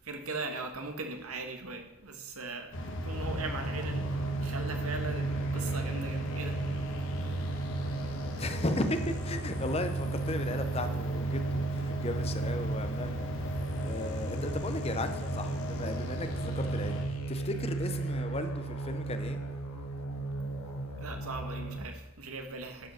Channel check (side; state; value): both; normal; correlation 0.63